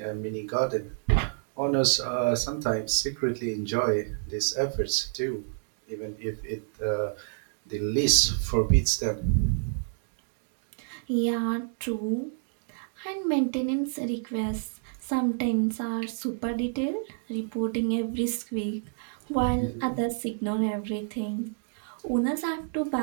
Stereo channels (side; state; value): left; silent; digital silence